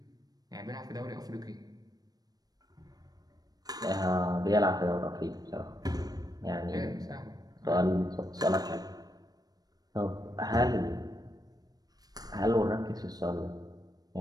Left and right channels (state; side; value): late; left; 0.19 ms